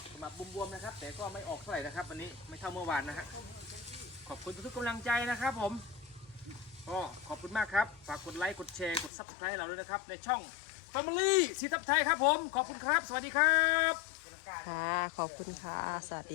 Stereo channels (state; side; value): drops out; right; at 9.1 s